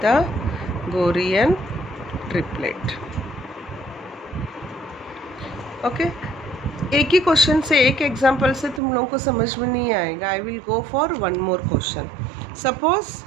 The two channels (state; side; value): drops out; left; at 8.8 s